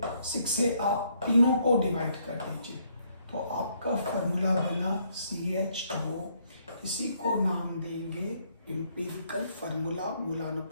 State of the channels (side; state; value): both; inverted; correlation -0.70